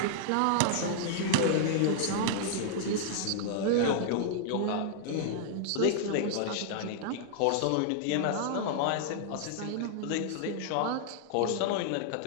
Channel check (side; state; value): both; different; correlation -0.01